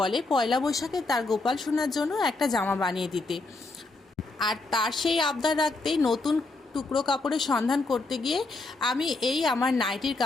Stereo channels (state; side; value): quieter; right; 3.3 dB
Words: পয়লা বৈশাখে তার গোপাল সোনার জন্য একটা জামা বানিয়ে দিতে। আর তার সেই আবদার রাখতেই নতুন টুকরো কাপড়ের সন্ধান করতে গিয়ে আমি এই আমার নাইটির